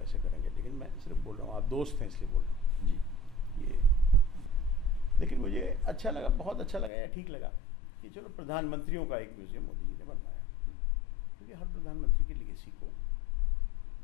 करेंगे, लेकिन मैं सिर्फ बोल रहा हूँ, आप दोस्त हैं इसलिए बोल रहा हूँ जी। ये लेकिन मुझे अच्छा लगा, बहुत अच्छा लगा या ठीक लगा कि चलो प्रधानमंत्रियों का एक म्यूज़ियम मोदी जी ने बनवाया, क्योंकि हर प्रधानमंत्री की लेगेसी को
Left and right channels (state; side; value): drops out; right; at 6.9 s